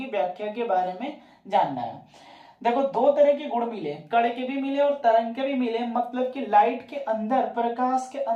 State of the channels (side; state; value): both; identical; correlation 1.00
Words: व्याख्या के बारे में जानना है। देखो, दो तरह के गुण मिले, कण के भी मिले और तरंग के भी मिले। मतलब कि लाइट के अंदर, प्रकाश के